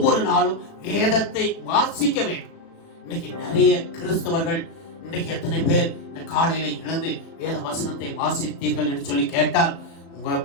நாளும் வேதத்தை வாசிக்க வேண்டும். இன்னைக்கு நிறைய கிறிஸ்தவர்கள், இன்னைக்கு எத்தனை பேர் இந்த காலையில எழுந்து வேத வசனத்தை வாசித்தீர்கள் என்று சொல்லி கேட்டால் உங்க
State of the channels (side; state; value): right; late; 36 ms